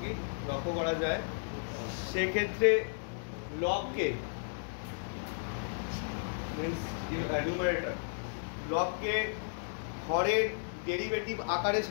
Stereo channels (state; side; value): silent; right; digital silence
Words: কি লক্ষ্য করা যায়, সেক্ষেত্রে লবকে নিউমারেটর লবকে হরের ডেরিভেটিভ আকারে